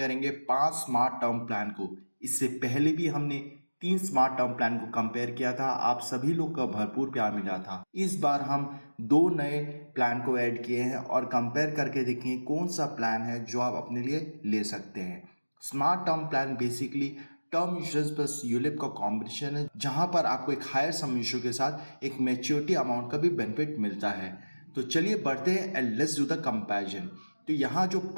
5 स्मार्ट टर्म प्लान को। इससे पहले भी हमने 3 स्मार्ट टर्म प्लान को कंपेयर किया था। आप सभी लोग का भरपूर प्यार मिला था। इस बार हम 2 नए प्लान को ऐड किए हैं और कंपेयर करके देखेंगे कौन सा प्लान है जो आप अपने लिए ले सकते हैं। Smart term plan basically term insurance plus ULIP का कॉम्बिनेशन है, जहां पर आपको एक हायर सम इंश्योर के साथ एक मैच्योरिटी अमाउंट का भी बेनिफिट मिलता है। तो चलिए बढ़ते हैं and let's do the comparison. तो यहाँ जो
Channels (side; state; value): both; inverted; correlation -1.00